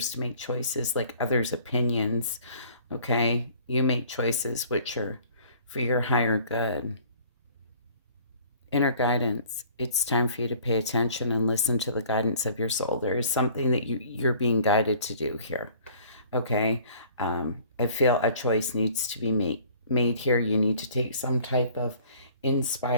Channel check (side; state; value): both; inverted; correlation -0.53